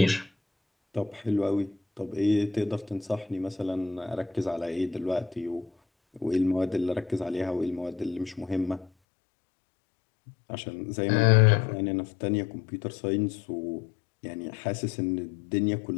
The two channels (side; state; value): right; drops out; at 8.9 s